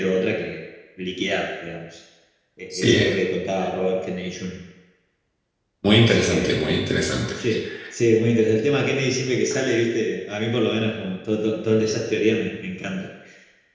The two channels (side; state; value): both; identical; correlation 1.00